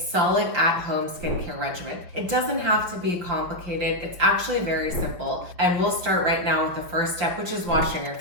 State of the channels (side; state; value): left; late; 5.9 ms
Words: at-home skincare regimen. It doesn't have to be complicated. It's actually very simple. And we'll start right now with the first step, which is washing your